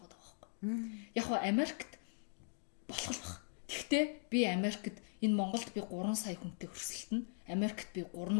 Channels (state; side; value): silent; right; 51 dB below the other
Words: байхгүй. Яг нь Америкт болох л баг. Тэгвэл би Америкт энэ Монголд би 3 сая хүнтэй өрсөлдөн, Америкт би